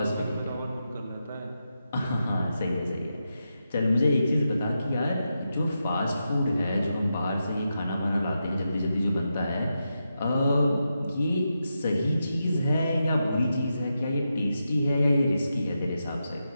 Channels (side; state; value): both; inverted; correlation -0.87